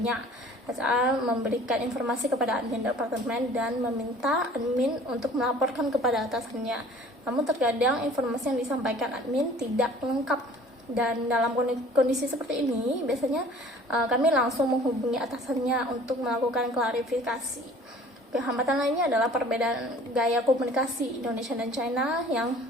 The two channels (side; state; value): both; normal; correlation 0.50